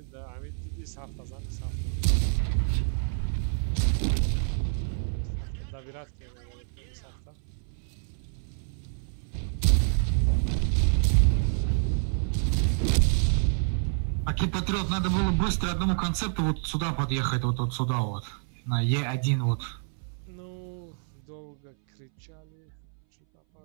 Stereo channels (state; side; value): silent; left; 59 dB below the other